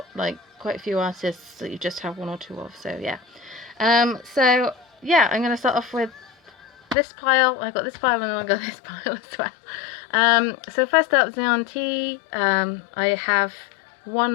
like quite a few artists that you just have one or two of, so yeah. I'm going to start off with this pile. I got this pile and I got this pile as well. So first up, Zion T. I have one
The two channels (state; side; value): drops out; right; at 7.0 s